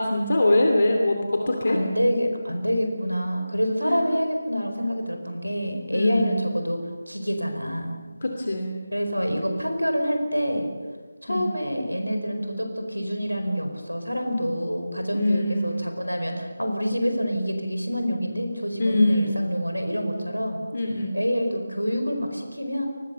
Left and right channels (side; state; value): both; inverted; correlation -0.95